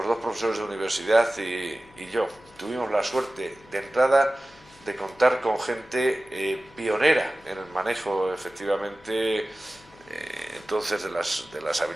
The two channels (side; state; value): left; noise; hum, 26 dB below the sound